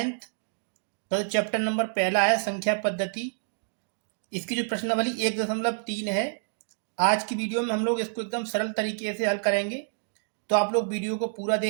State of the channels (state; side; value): silent; left; digital silence